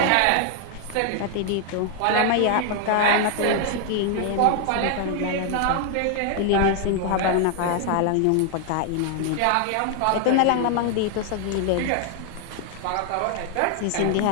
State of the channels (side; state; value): both; different; correlation 0.00